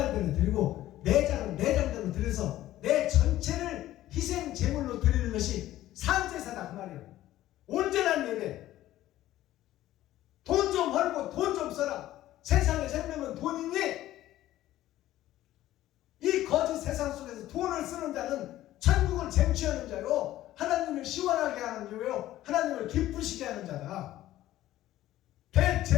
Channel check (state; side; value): quieter; right; 14.4 dB